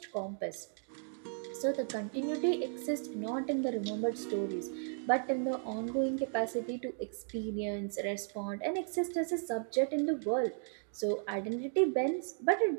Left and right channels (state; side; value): silent; left; 54 dB below the other